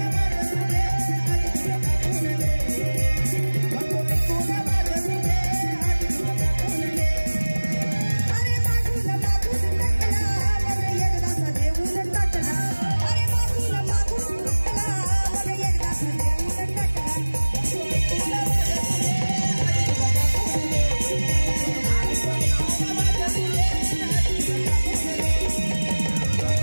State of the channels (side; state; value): both; inverted; correlation -1.00